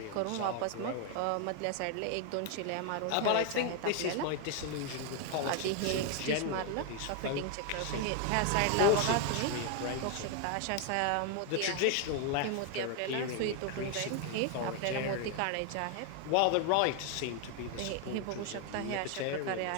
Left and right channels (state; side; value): different; both; correlation 0.01